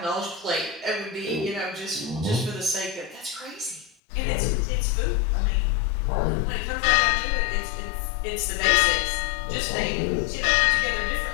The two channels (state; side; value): drops out; right; at 3.9 s